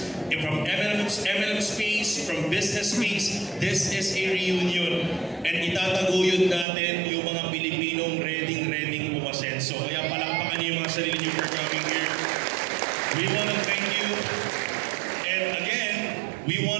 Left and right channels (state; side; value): drops out; left; at 6.7 s